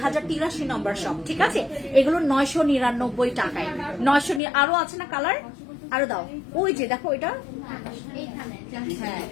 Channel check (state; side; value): drops out; right; at 4.4 s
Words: নম্বর শপ, ঠিক আছে। এগুলো 999 টাকায়, 900। আরো আছে না কালার, আরো দাও, ওই যে দেখো এটা, হ্যাঁ